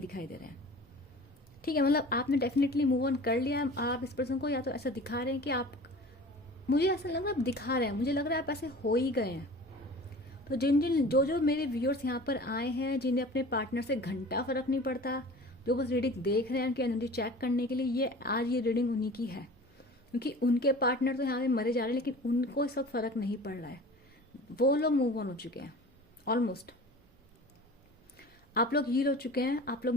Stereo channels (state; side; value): normal; both; correlation 0.40